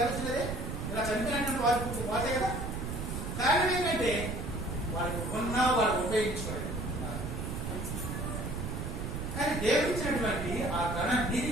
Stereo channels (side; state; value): right; noise; rumble, 4 dB below the sound